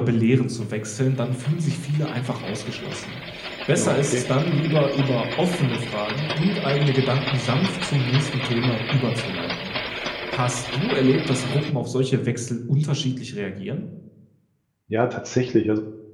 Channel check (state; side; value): identical; both; correlation 1.00